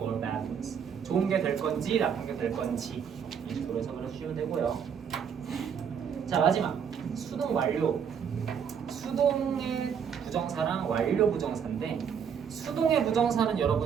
bad ones. 좋은 게 될 건지 나쁜 게 될 건지 이 식으로 해석을 해주시면 되고요. 자, 마지막 수동 완료. 수동의 부정사랑 완료 부정사인데, 수동의 부정사는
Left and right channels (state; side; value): quieter; left; 7.4 dB